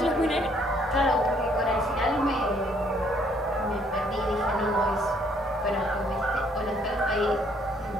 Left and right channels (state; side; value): normal; both; correlation 0.66